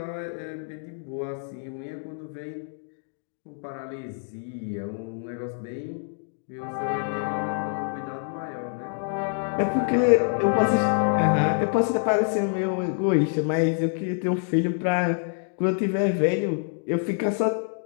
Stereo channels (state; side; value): silent; right; 61 dB below the other